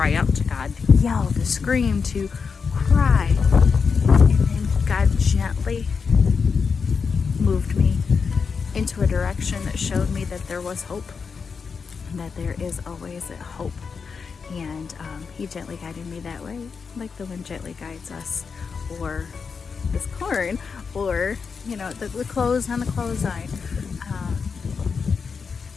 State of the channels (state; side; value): quieter; right; 5.5 dB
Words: out to God, to yell, to scream, to cry. And then God gently moved me into a direction that showed me that there was hope, and that there is always a hope. And He gently guided me that way, like the wind gently guides us, or this corn, or the clothes on the clothesline.